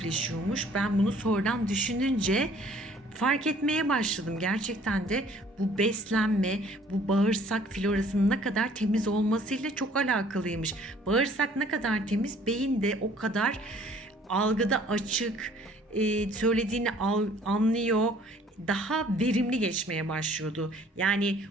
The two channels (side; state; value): both; normal; correlation 0.56